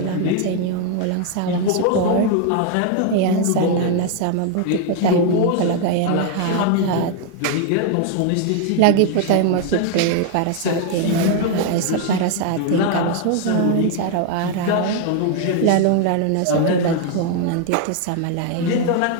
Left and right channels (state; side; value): different; both; correlation 0.00